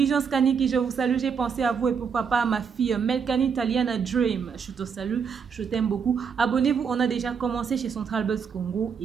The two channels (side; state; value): left; quieter; 6.4 dB